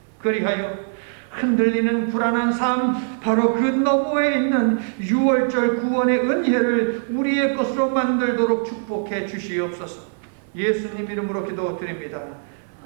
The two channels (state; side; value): silent; left; 64 dB below the other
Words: 그리하여 흔들리는 불안한 삶, 바로 그 너머에 있는 6월절 구원의 은혜를 우리의 것으로 만들도록 축복해 주시옵소서. 예수님 이름으로 기도드립니다.